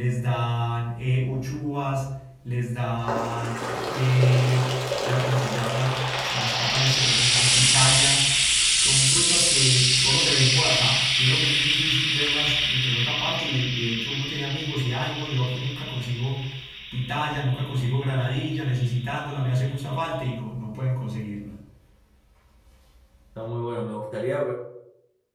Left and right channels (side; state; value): both; identical; correlation 1.00